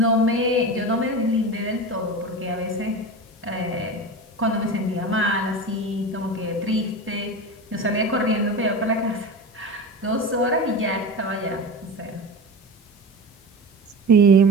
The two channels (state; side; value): normal; both; correlation 0.28